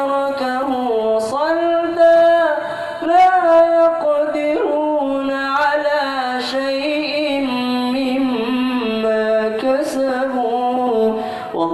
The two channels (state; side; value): identical; both; correlation 1.00